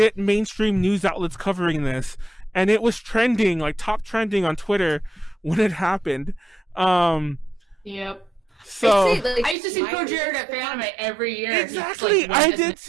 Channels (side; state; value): left; drops out; at 9.6 s